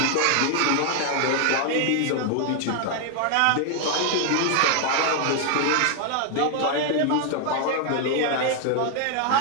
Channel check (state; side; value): different; both; correlation 0.00